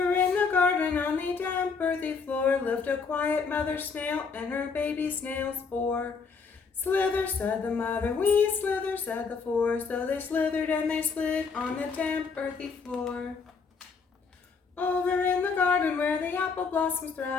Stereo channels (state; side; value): quieter; right; 5.2 dB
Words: in the garden on the damp earthy floor lived a quiet mother snail and her baby snails four. Slither, said the mother, we slither, said the four. So they slithered and they slid on the damp earthy floor. Over in the garden where the apple blossoms